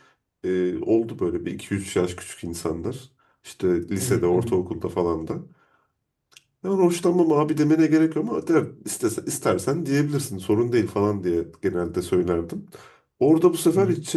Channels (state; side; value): identical; both; correlation 1.00